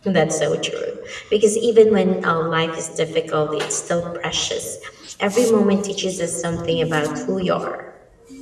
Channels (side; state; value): both; identical; correlation 1.00